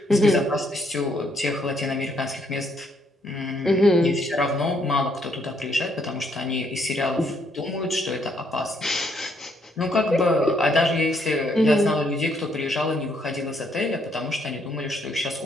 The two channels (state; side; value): normal; both; correlation 0.71